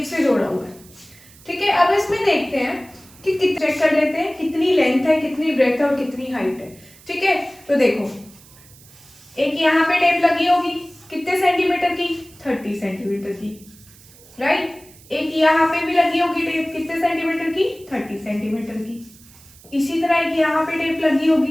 से जोड़ा हुआ है। ठीक है, अब इसमें देखते हैं कि चेक कर लेते हैं कितनी लेंथ है, कितनी ब्रेथ है और कितनी हाइट है। ठीक है, तो देखो एक यहाँ पे टेप लगी होगी कितने सेंटीमीटर की, 30 सेंटीमीटर की, राइट। एक यहाँ पे भी लगी होगी टेप कितने सेंटीमीटर की, 30 सेंटीमीटर की। इसी तरह एक यहाँ पे टेप लगी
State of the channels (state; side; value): noise; right; hiss, 24 dB below the sound